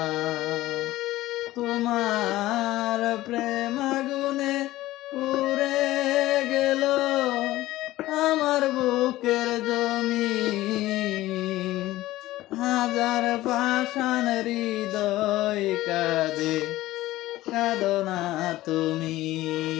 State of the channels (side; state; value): right; quieter; 16.5 dB